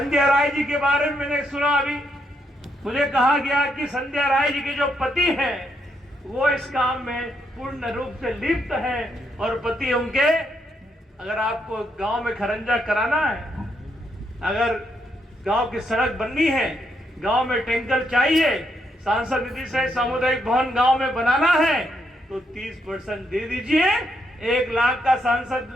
राय जी के बारे में मैंने सुना, अभी मुझे कहा गया कि संध्या राय जी के जो पति हैं वो इस काम में पूर्ण रूप से लिप्त हैं और पति उनके, अगर आपको गांव में खरंजा कराना है, अगर गांव की सड़क बननी है, गांव में टैंकर चाहिए, सांसद निधि से सामुदायिक भवन गांव में बनाना है तो 30% दे दीजिए। 1 लाख का सांसद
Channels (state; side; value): normal; both; correlation 0.78